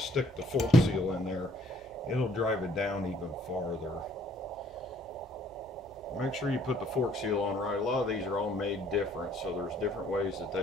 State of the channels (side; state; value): both; normal; correlation 0.62